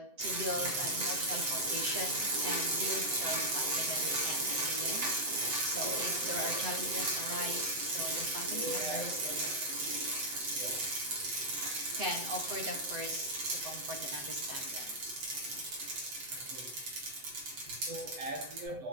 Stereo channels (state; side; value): late; left; 7.9 ms